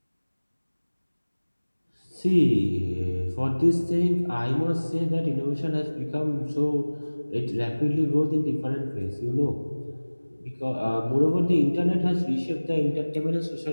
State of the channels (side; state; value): both; inverted; correlation -1.00